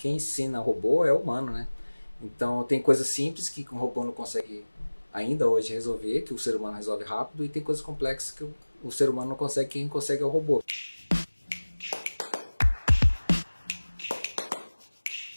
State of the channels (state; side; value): inverted; both; correlation -1.00